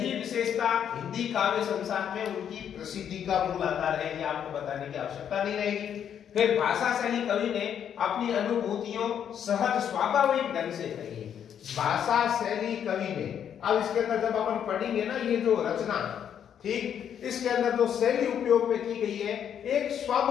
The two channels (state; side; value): quieter; right; 8.9 dB